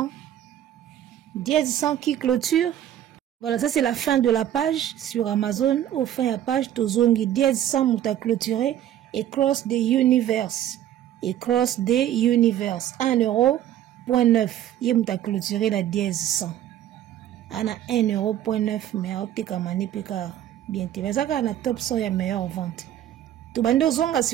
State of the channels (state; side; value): quieter; left; 11.5 dB